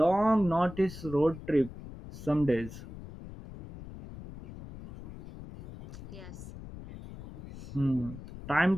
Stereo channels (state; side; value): noise; left; rumble, 13 dB below the sound